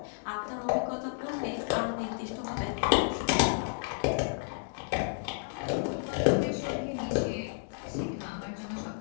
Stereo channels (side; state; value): right; silent; digital silence